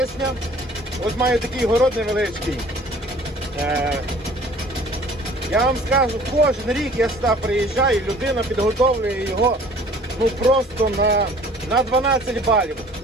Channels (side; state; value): both; normal; correlation 0.50